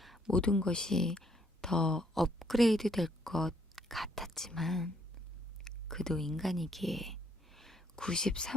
모든 것이 더 업그레이드 될 것 같았지만 그도 인간이기에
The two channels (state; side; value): normal; both; correlation 0.68